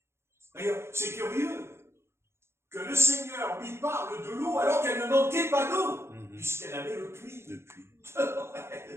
D'ailleurs, c'est curieux que le Seigneur lui parle de l'eau alors qu'elle ne manquait pas d'eau, puisqu'elle avait le puits. Le puits.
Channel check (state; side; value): late; left; 0.12 ms